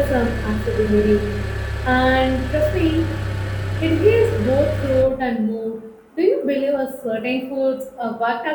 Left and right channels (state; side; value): identical; both; correlation 1.00